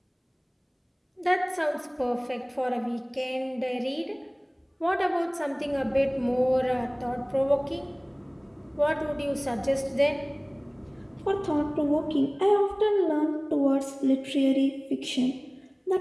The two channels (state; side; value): identical; both; correlation 1.00